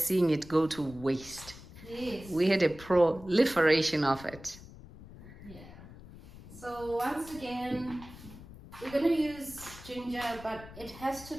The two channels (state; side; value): noise; left; rumble, 17 dB below the sound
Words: seeing it go to waste. Yes. We had a proliferation of it. Yeah. So once again, we're going to use ginger, but it has to